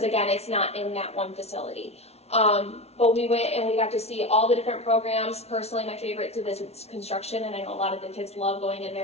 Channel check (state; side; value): late; right; 0.31 ms